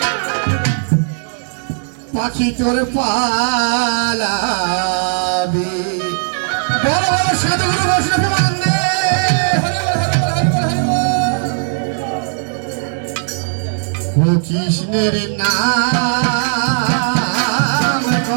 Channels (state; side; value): silent; left; digital silence